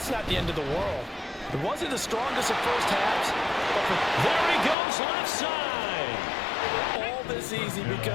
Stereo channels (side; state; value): right; drops out; at 4.8 s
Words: not the end of the world. It wasn't the strongest of first halves. But there he goes, left side. All this easy